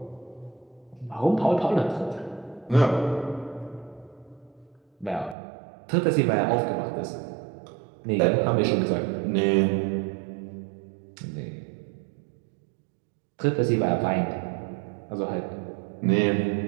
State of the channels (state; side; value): drops out; left; at 5.4 s